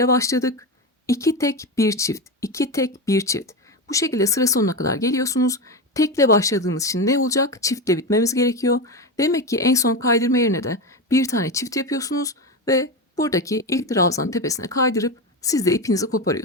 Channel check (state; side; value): normal; both; correlation 0.17